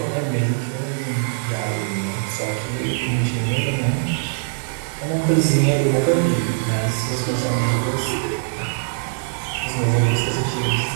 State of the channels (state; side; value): silent; left; 64 dB below the other